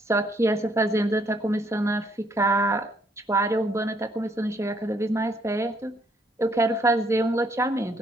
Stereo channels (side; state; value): both; normal; correlation 0.69